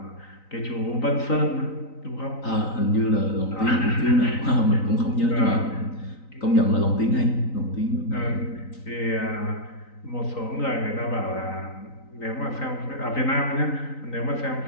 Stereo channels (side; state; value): right; late; 3.9 ms